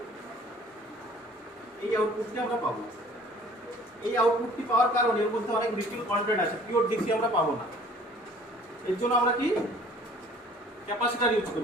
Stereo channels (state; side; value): normal; both; correlation 0.52